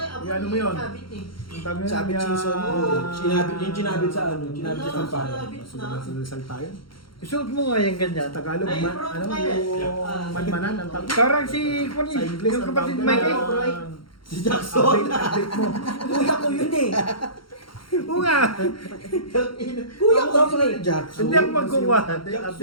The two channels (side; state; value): right; late; 0.73 ms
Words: Apo. Ano mo yun? Sabit eh. Ang tawag yun, Sabit season. Sinabit yung sinabit sa ano, sinabit sa kampanya. Sabit na. Sa Rizal tayo. Isuot mo nga yung ganyan. Tagalog, Ay, man, bro, ano kaya. yung manmanan, ang tawag. Parang si Sa English, yung ang kapatid tawag Mike. doon, Si Jackson. update mo. Kuya ko yun eh. Oo nga. Kuya ko yun eh. Jackson. Hindi ako magkuha.